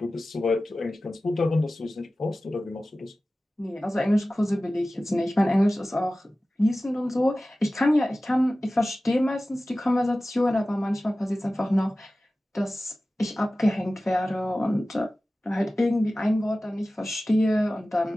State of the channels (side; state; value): both; normal; correlation 0.96